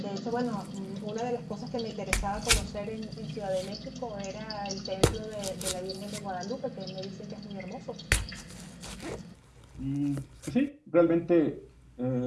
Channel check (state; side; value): identical; both; correlation 1.00